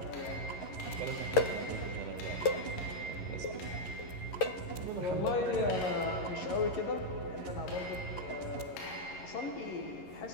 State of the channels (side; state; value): right; late; 11 ms